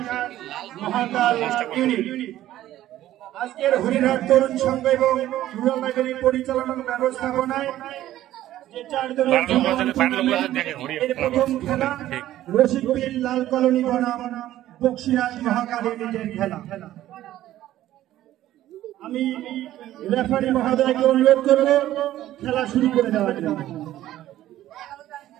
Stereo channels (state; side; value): quieter; left; 13.7 dB